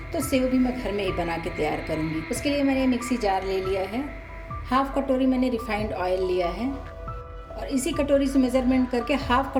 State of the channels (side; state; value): both; identical; correlation 1.00